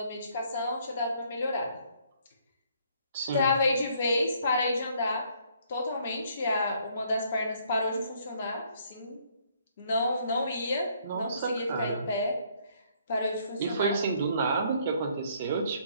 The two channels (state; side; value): inverted; both; correlation -0.65